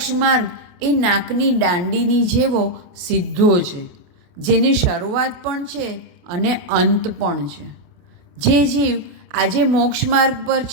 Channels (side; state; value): left; late; 28 ms